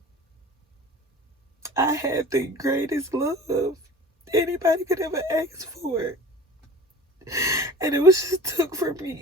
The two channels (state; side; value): normal; both; correlation 0.40